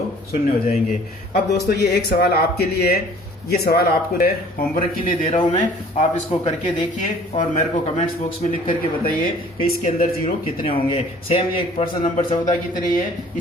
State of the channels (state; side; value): normal; both; correlation 0.52